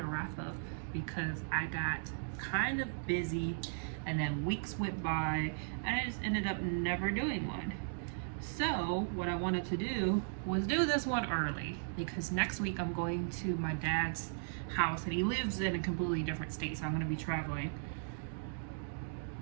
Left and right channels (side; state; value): left; silent; digital silence